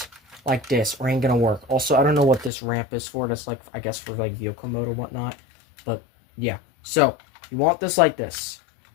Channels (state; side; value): drops out; right; at 2.5 s